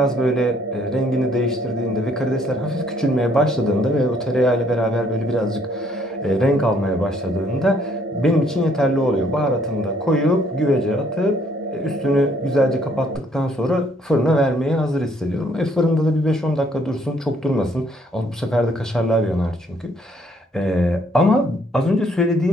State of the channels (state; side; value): normal; both; correlation 0.66